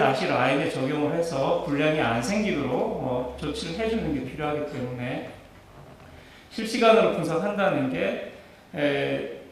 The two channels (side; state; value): both; identical; correlation 1.00